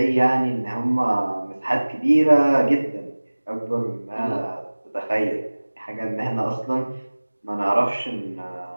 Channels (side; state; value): both; inverted; correlation -1.00